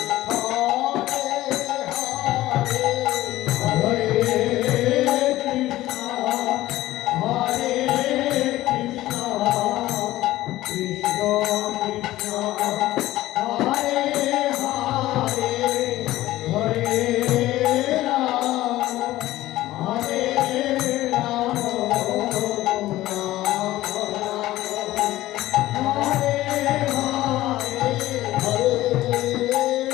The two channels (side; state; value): right; quieter; 16.0 dB